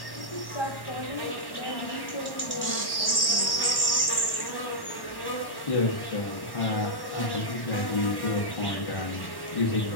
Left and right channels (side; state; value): right; late; 1.1 ms